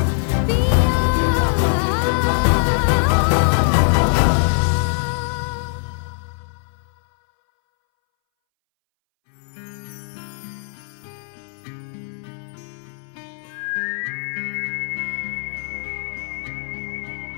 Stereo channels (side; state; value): right; silent; 62 dB below the other